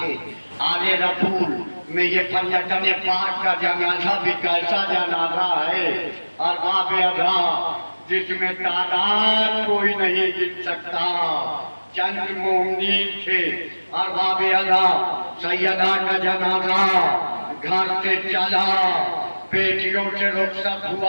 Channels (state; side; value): inverted; both; correlation -1.00